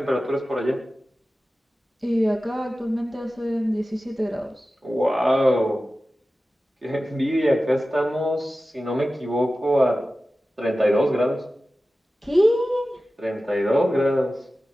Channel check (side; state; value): both; normal; correlation 0.95